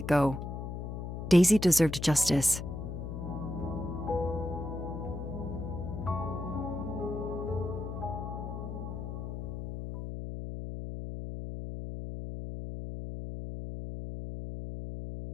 go. Daisy deserved justice.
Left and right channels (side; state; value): left; noise; hum, 6 dB below the sound